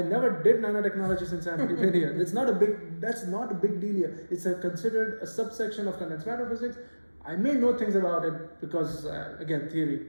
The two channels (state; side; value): inverted; both; correlation -1.00